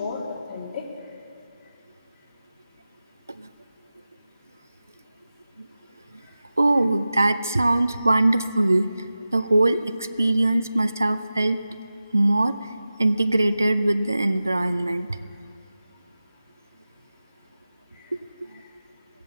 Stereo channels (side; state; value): both; inverted; correlation -0.94